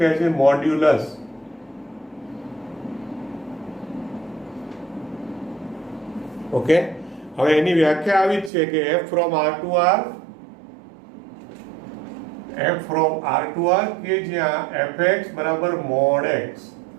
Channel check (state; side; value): drops out; left; at 8.5 s